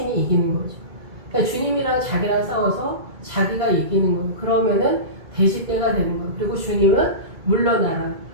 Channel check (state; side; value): late; left; 2.3 ms